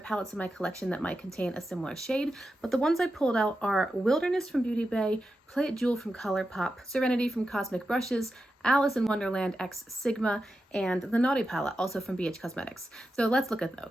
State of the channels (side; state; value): both; normal; correlation 0.90